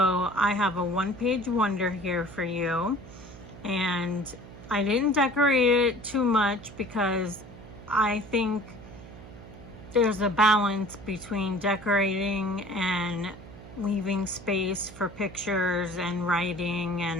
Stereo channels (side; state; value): right; noise; hum, 17 dB below the sound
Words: I have a one-page wonder here for you. And I didn't decorate it too much because I think there's a balance between decorating and leaving space for pictures and writing